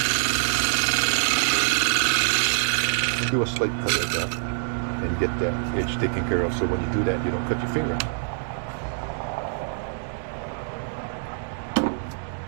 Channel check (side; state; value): left; silent; digital silence